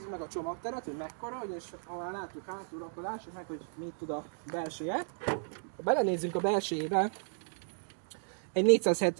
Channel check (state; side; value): silent; left; digital silence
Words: meg a csomagteret, hogy mekkora, és ha már látjuk hátul, akkor lássuk meg, hogy mit tud a belseje. Ha belenézzünk a belsejébe, egy